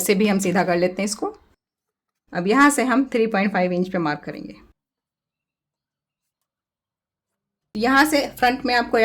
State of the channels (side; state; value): both; identical; correlation 1.00